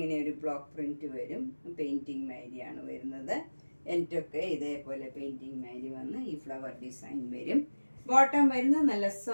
ഒരു ബ്ലോക്ക് പ്രിൻറ്റ് വരും. പെയിൻറ്റിങ് മാതിരിയാണ് വരുന്നത്. എനിക്കൊക്കെ ഇതേപോലെ പെയിൻറ്റിങ് മാതിരി വന്ന് ഈ ഫ്ലവർ ഡിസൈൻ വരും. ബോട്ടം വരുന്നത് നല്ല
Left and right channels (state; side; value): inverted; both; correlation -1.00